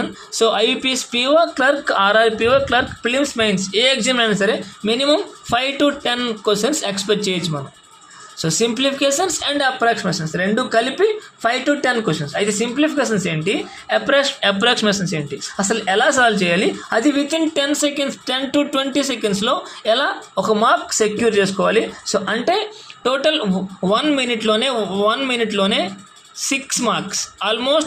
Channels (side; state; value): both; identical; correlation 1.00